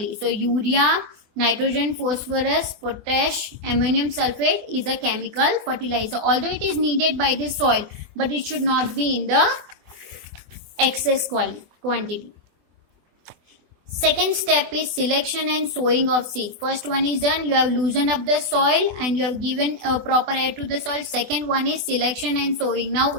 So urea, nitrogen, phosphorus, potash, ammonium sulfate is a chemical fertilizer. Although it is needed by the soil, but it should not be in the excess quantity. Second step is selection and sowing of seeds. First one is done. You have loosened up the soil and you have given a proper air to the soil. Second one is selection and sowing. Now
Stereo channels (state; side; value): late; left; 24 ms